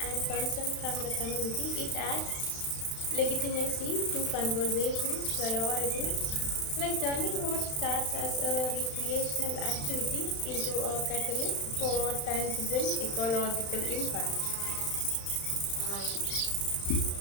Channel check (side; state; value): right; late; 35 ms